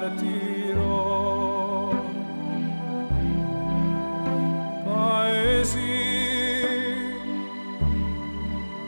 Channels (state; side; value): inverted; both; correlation -1.00